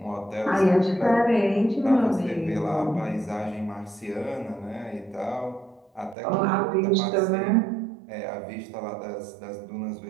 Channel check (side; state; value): left; drops out; at 6.2 s